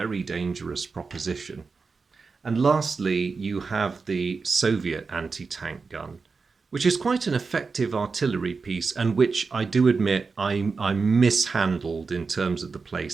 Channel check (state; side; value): quieter; left; 4.6 dB